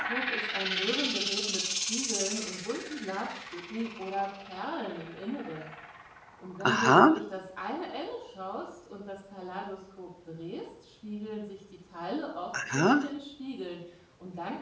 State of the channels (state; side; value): identical; both; correlation 1.00